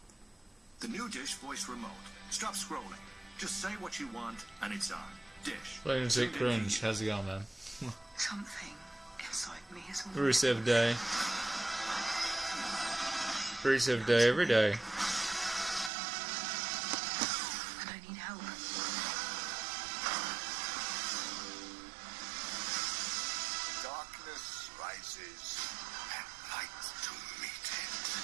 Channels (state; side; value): drops out; left; at 15.9 s